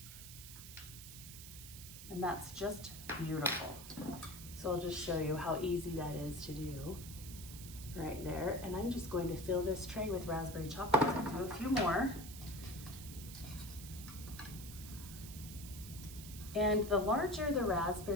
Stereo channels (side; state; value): right; noise; hiss, 12 dB below the sound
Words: And that's just beautiful. So I'll just show you how easy that is to do right there. And I'm just going to fill this tray with raspberry chocolates and do a few more. And the larger the